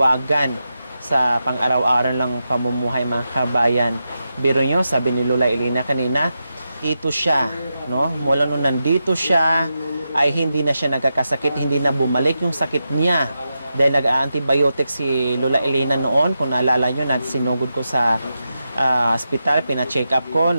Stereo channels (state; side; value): inverted; both; correlation -0.89